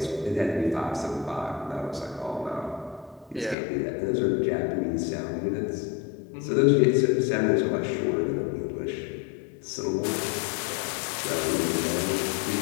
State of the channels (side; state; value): right; drops out; at 3.6 s